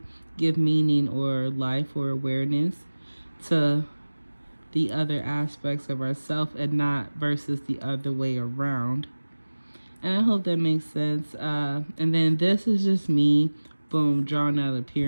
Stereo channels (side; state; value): both; inverted; correlation -1.00